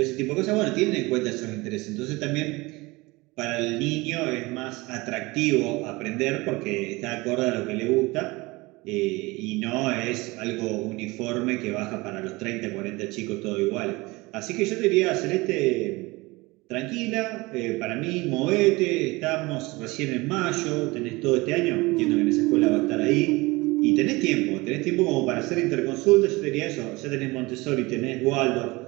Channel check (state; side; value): quieter; left; 22.8 dB